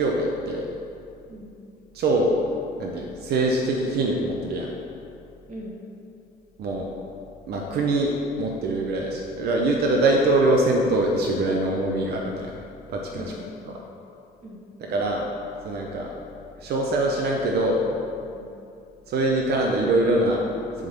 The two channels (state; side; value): normal; both; correlation 0.42